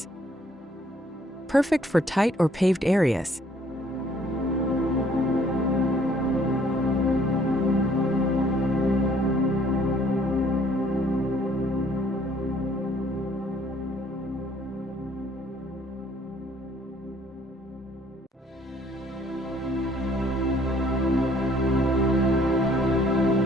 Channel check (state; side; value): normal; both; correlation 0.61